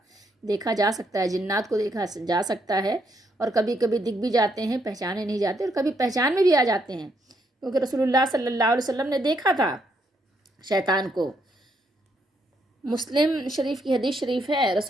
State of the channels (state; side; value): normal; both; correlation 0.75